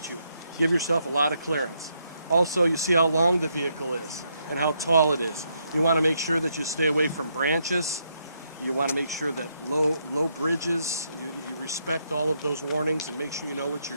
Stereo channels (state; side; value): inverted; both; correlation -0.77